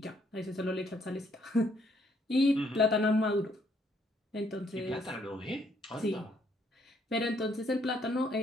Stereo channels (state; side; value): normal; both; correlation 0.69